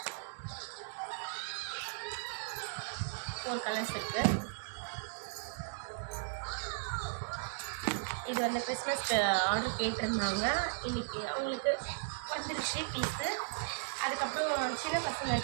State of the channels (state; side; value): silent; left; digital silence